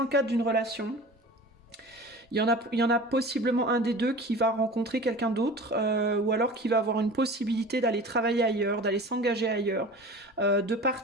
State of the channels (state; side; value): normal; both; correlation 0.38